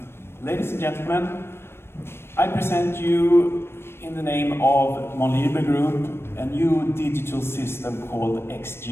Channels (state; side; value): late; right; 0.12 ms